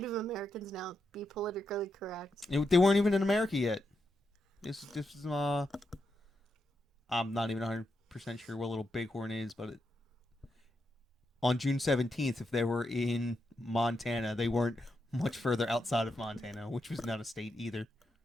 Americans now. Be politically correct. They weren't even in America yet. This is I'm not even 100% sure what Little Bighorn is, but on June 17th, if they were in Montana, they weren't much further outside of Montana, which was not a state either.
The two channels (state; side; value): normal; both; correlation 0.84